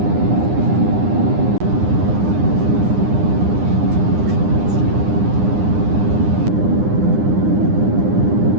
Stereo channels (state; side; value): late; left; 9.8 ms